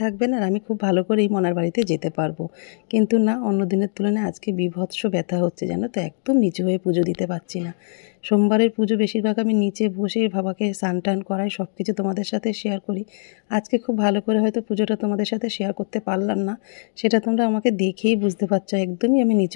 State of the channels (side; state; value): right; silent; digital silence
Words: থাকবে না আর আমি খুব ভালো করেই মনার বাড়িতে যেতে পারবো, কিন্তু না, অন্য দিনের তুলনায় আজকে বীভৎস ব্যথা হচ্ছে, জানো তো। একদম নিচু হয়ে পুজো দিতে পারছি না। সোমবারের পুজো বেশিরভাগ আমি নিচে বসে বাবাকে স্নান টান করাই, সব কিছু তোমাদের সাথে শেয়ার করি। আজকে খুব ভালো করে হয়তো পুজোটা তোমাদের সাথে শেয়ার করতে পারলাম না, সেটা তোমরা আমাকে দেখেই বুঝতে পারছো। একদমই আমি